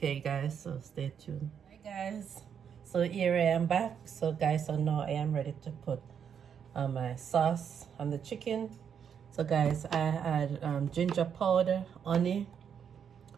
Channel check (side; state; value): left; quieter; 7.7 dB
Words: guys, so stay tuned. Hi guys, so here I am back. So guys, so now I am ready to put my sauce on the chicken. So guys, I add ginger powder, honey,